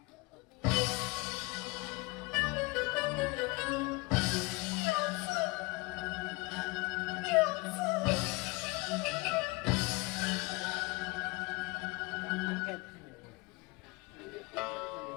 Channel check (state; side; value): quieter; right; 25.6 dB